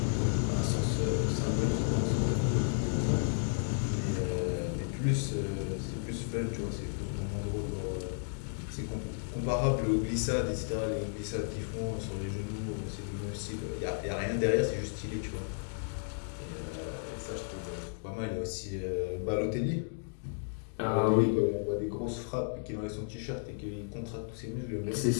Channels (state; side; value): silent; right; digital silence